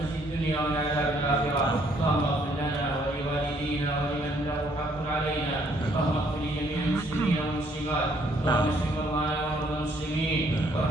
الدنيا ومن عذاب الآخرة. اللهم اغفر لنا ولوالدينا ولمن له حق علينا. اللهم اغفر لجميع المسلمين والمسلمات. اللهم اشف مرضانا ومرضى المسلمين،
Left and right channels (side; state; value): both; normal; correlation 0.66